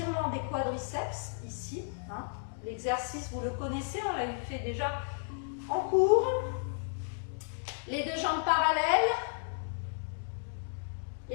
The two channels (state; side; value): silent; right; digital silence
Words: des quadriceps ici. Hein. L'exercice, vous le connaissez, on l'a fait déjà en cours. Les deux jambes parallèles.